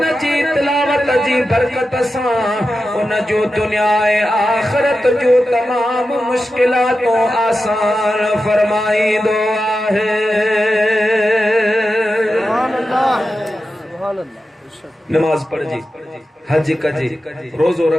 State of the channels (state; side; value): normal; both; correlation 0.91